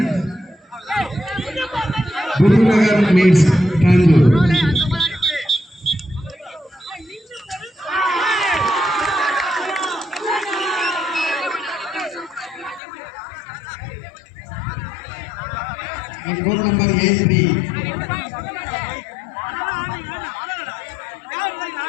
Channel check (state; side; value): drops out; right; at 12.8 s